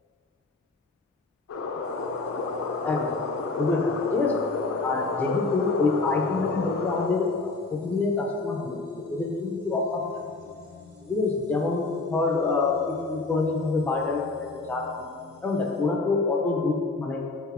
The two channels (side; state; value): right; quieter; 3.4 dB